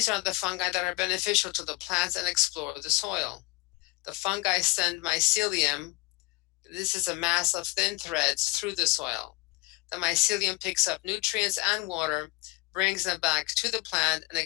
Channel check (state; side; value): quieter; right; 23.1 dB